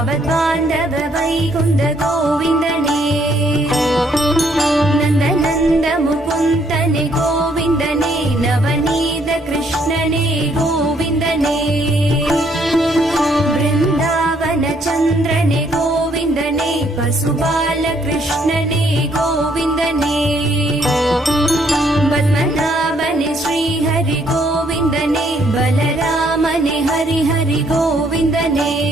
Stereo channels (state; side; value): normal; both; correlation 0.68